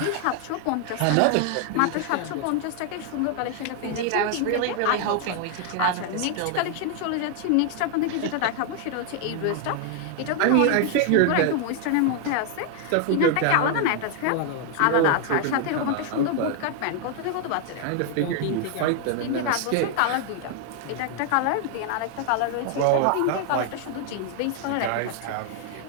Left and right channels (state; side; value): different; both; correlation 0.00